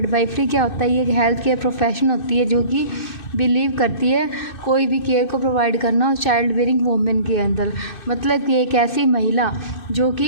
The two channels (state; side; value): late; right; 2.6 ms